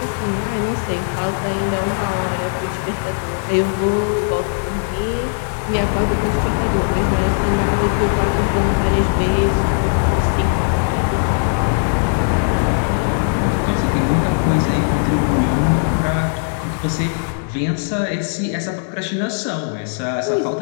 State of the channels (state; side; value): silent; right; digital silence